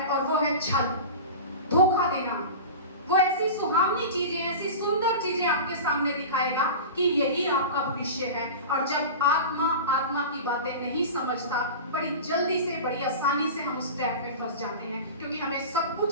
और वो है छल, धोखा देना। वो ऐसी सुहावनी चीजें, ऐसी सुंदर चीजें आपके सामने दिखाएगा कि यही आपका भविष्य है। और जब आत्मा आत्मा की बातें नहीं समझता, बड़ी जल्दी से, बड़ी आसानी से हम उस ट्रैप में फंस जाते हैं, क्योंकि हमें सब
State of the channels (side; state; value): both; inverted; correlation -0.31